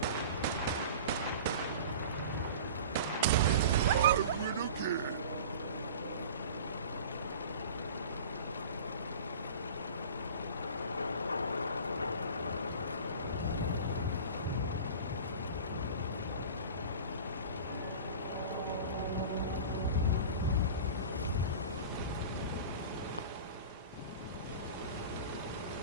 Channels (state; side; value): inverted; both; correlation -0.37